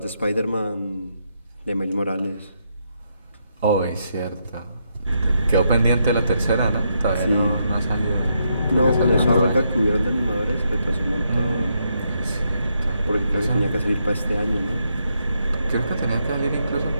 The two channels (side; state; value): both; inverted; correlation -0.79